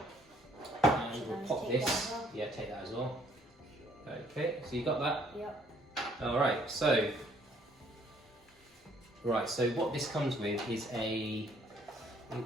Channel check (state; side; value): normal; both; correlation 0.63